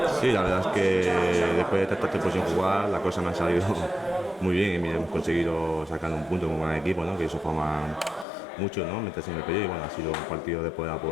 Sí, la verdad es que después de tanto tiempo sin jugar, la cosa me ha salido muy bien y mira, hemos conseguido sacar un punto como buen equipo, ¿no? Que eso forma mucho, ¿no? Meterse en el periodo y bueno, ha sido un partido de poder a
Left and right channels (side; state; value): right; drops out; at 8.2 s